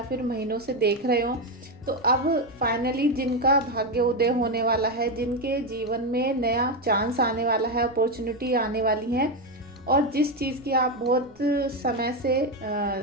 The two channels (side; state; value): right; noise; rumble, 29 dB below the sound